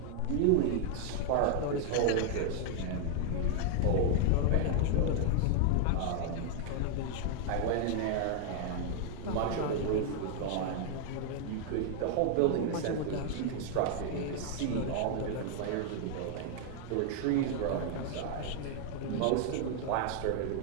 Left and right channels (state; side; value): different; both; correlation 0.00